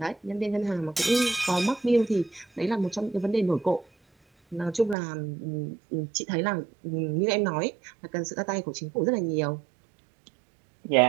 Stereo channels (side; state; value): left; drops out; at 5.0 s